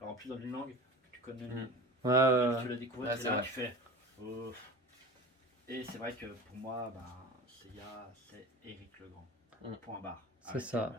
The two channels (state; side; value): normal; both; correlation 0.34